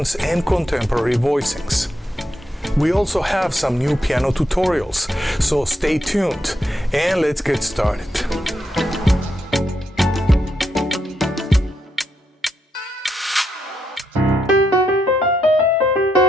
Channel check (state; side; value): normal; both; correlation 0.80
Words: and contemporary voicings. We also have some new piano tutorials, so stay tuned and let's get started.